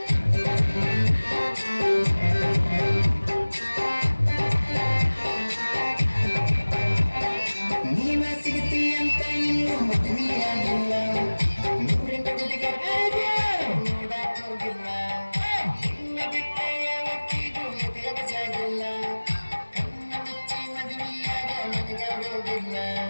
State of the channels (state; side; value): inverted; both; correlation -1.00